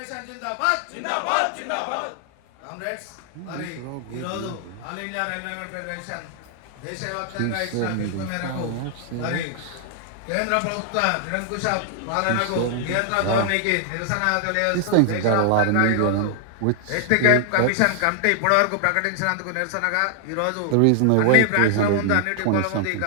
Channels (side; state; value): both; different; correlation 0.00